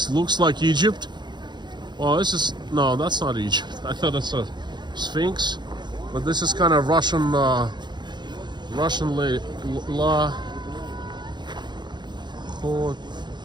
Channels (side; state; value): left; late; 0.21 ms